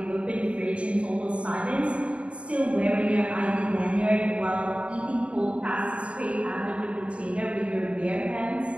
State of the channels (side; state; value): left; late; 0.061 ms